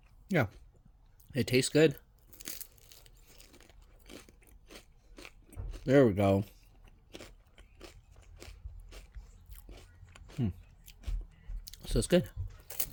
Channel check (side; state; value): both; identical; correlation 1.00